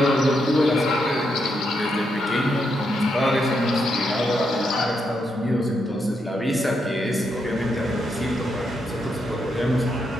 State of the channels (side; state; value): both; normal; correlation 0.81